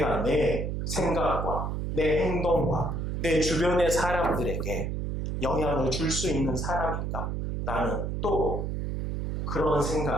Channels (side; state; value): right; noise; hum, 2 dB below the sound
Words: 내 생각과 내 행동과 내 주변의 사람들에게 영향을 줄 수 있는 사람인가? 나는 또 그런